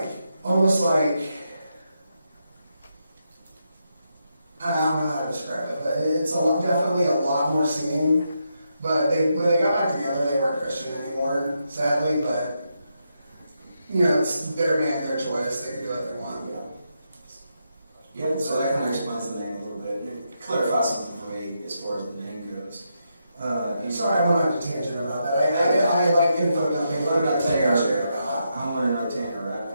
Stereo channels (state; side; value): inverted; both; correlation -0.82